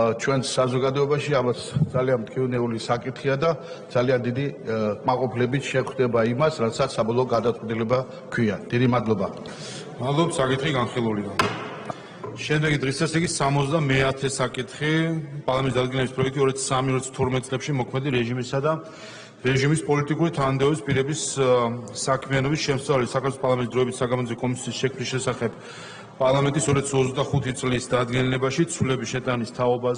ჩვენს საზოგადოებაში ამას ძალიან მტკივნეული საკითხია და ძალიან დიდი კმაყოფილებით შეხვდება იმას, რასაც საბოლოო გადაწყვეტილება ჰქვია. დიდი მადლობა. მადლობთ, საკითხი განხილულია. შემდეგი დღის წესრიგის 70-მე საკითხი პარლამენტის დადგენილების პროექტი 2003-2012 წლებში მოქმედი რეჟიმისა და რეჟიმის პოლიტიკური თანამდებობის პირების საქმიანობის შემსწავლელი საქართველოს პარლამენტის დროებით საგამოძიებო კომისიის შექმნის შესახებ პარლამენტის 2025 წლის დადგენილებაში ცვლილების შეტანის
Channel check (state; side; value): identical; both; correlation 1.00